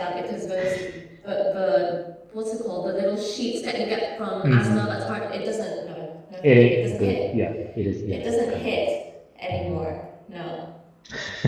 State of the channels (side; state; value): both; identical; correlation 1.00